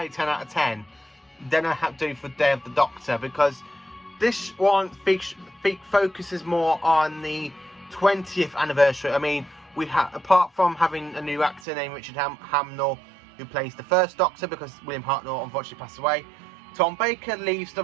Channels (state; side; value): drops out; left; at 11.6 s